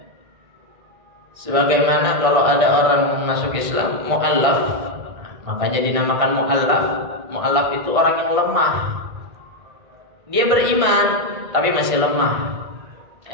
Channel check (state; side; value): late; left; 1.6 ms